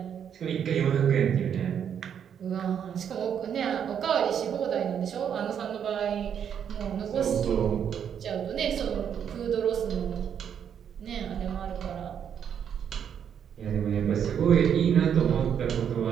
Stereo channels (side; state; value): left; quieter; 8.3 dB